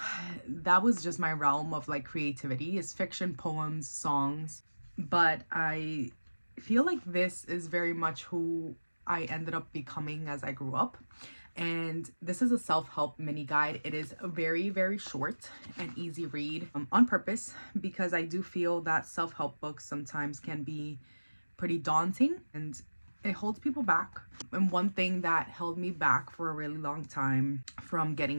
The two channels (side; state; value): both; inverted; correlation -1.00